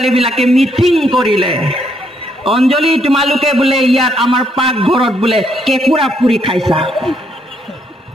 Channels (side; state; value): both; normal; correlation 0.73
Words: মিটিং কৰিলে, অঞ্জলি তোমালোকে বোলে ইয়াত আমাৰ পাকঘৰত বোলে কেঁকুৰা পুৰি খাইছা।